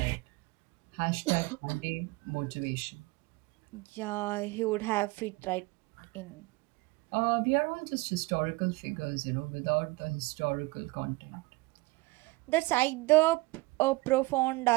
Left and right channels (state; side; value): quieter; left; 22.6 dB